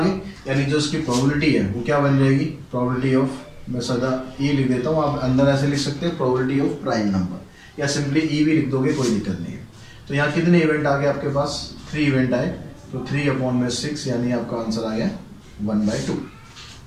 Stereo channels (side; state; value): both; identical; correlation 1.00